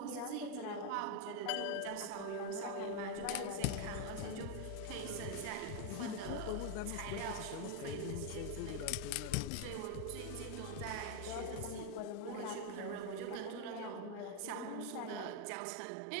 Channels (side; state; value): both; different; correlation 0.01